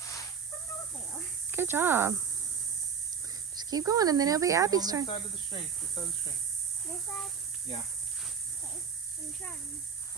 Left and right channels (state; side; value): quieter; left; 6.6 dB